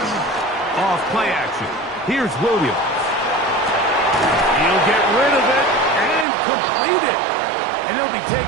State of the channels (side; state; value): left; drops out; at 6.2 s